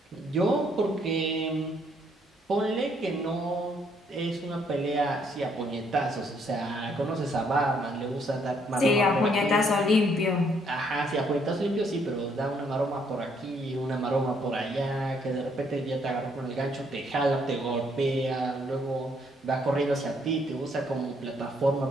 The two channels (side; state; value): both; normal; correlation 0.69